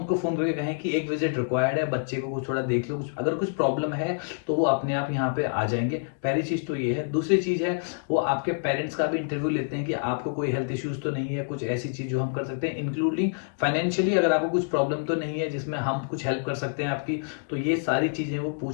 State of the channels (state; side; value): silent; right; digital silence